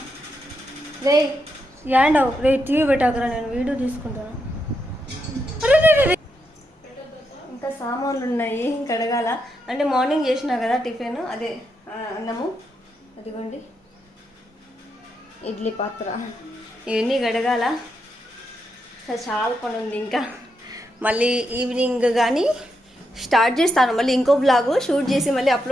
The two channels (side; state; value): both; normal; correlation 0.82